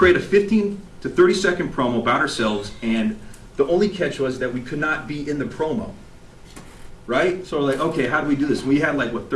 a 15 to 30-second promo about ourselves, and the only catch was that we could not be in the promo. Right? So we're like, okay, how do we do this? We had like, what,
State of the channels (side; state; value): both; identical; correlation 1.00